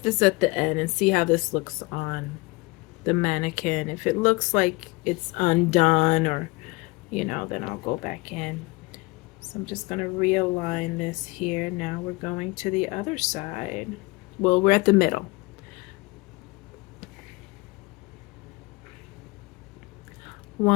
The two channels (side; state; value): right; quieter; 24.3 dB